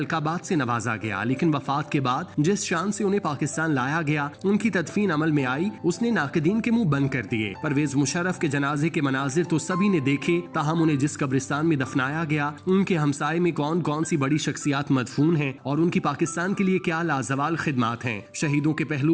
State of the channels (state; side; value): identical; both; correlation 1.00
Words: से नवाजा गया, लेकिन वफात के बाद जिस शान से उन्हें पाकिस्तान लाया गया, उनकी तदफीन अमल में आई, उसने नाक़दीन के मुंह बंद कर दिए। परवेज मुशर्रफ के जनाजे के मनाजिर तो सभी ने देखे, ताहम उन्हें जिस कब्रिस्तान में दफनाया गया, उनके हमसाये में कौन कौन सी बड़ी शख्सियात मदफून हैं और उनकी पाकिस्तान के लिए क्या लाजवाल खिदमात हैं। शहीदों के